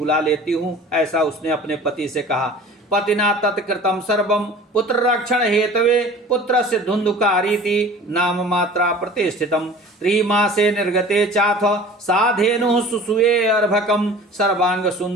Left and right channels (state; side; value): normal; both; correlation 0.43